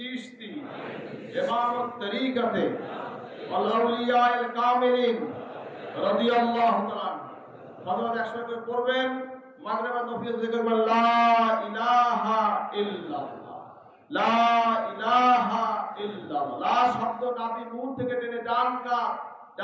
ইমামুত তরিকাতে ওয়াল আউলিয়ায়ে কামিলিন রাদিয়াল্লাহু তাআলা। ফজর 100 করে পড়বেন, মাগরিব আর নফিল জিকির করবেন, লা ইলাহা ইল্লাল্লাহ, লা ইলাহা ইল্লাল্লাহ। লা শব্দ নাভি মূল থেকে টেনে ডান কাত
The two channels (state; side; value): identical; both; correlation 1.00